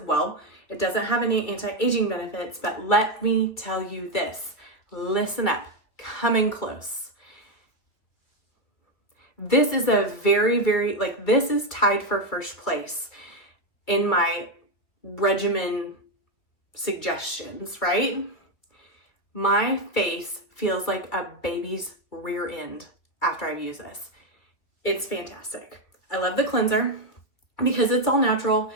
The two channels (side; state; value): right; late; 2.5 ms